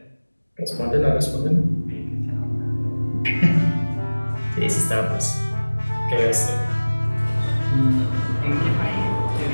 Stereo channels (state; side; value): inverted; both; correlation -1.00